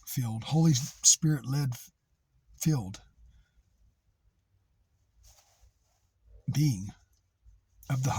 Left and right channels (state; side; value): identical; both; correlation 1.00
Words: Holy Spirit-led filled being of the